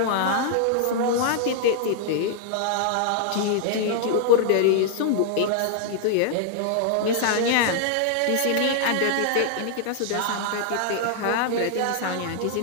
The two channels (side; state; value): both; different; correlation -0.01